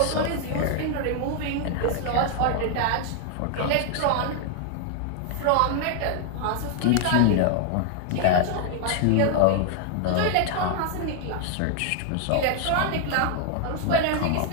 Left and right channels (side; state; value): both; different; correlation 0.00